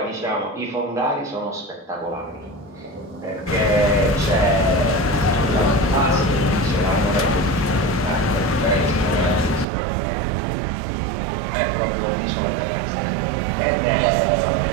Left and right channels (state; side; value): drops out; left; at 9.7 s